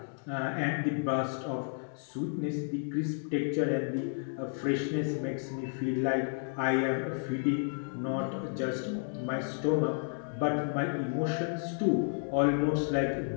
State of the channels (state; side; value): silent; right; digital silence